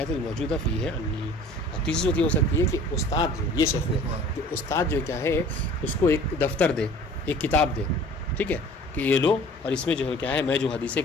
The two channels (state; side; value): normal; both; correlation 0.47